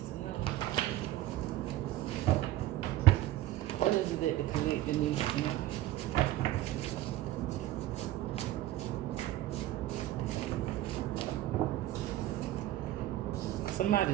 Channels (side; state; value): left; quieter; 14.6 dB